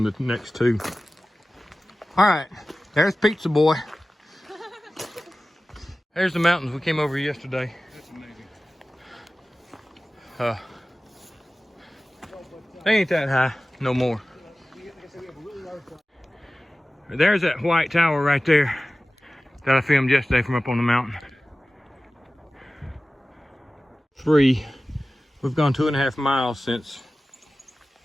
the next 2. All right, there's Pizza Boy. There's the mountains we came over yesterday. That's amazing. They ain't that high no more. There's that white tower right there that I filmed yesterday from up on the mountain. 3. We've gone 2.5 miles since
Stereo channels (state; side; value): normal; both; correlation 0.96